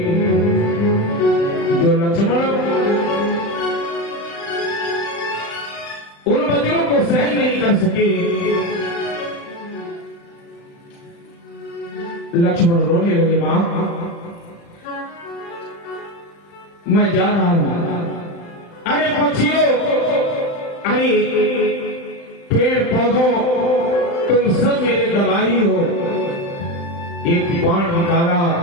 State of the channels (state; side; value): late; right; 35 ms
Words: जो लक्ष्मण उन वचनों को सहन नहीं कर सके। लक्ष्मण रोने लगे, मां मैं जा रहा हूं। अरे पक्षियों, अरे पेड़ पौधों, तुम सब मेरे दवाई हो। एक बाण निकाला,